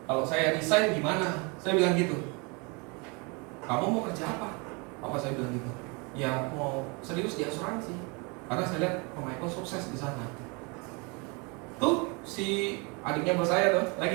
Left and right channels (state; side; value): quieter; left; 30.6 dB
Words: kalau saya resign gimana? Saya bilang gitu. Kamu mau kerja apa? Papa saya bilang gitu. Ya mau serius di asuransi. Karena saya lihat Pak Michael sukses di sana. Tuh si adiknya bos saya tuh